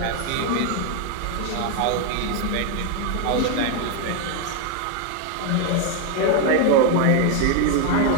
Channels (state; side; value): different; both; correlation 0.01